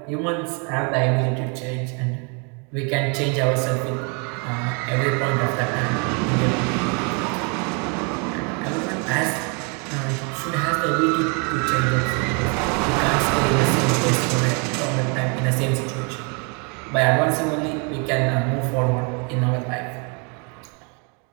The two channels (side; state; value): left; quieter; 35.2 dB